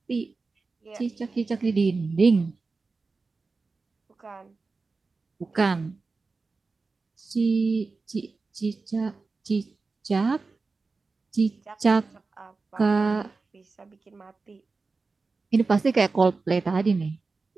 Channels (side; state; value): left; quieter; 4.0 dB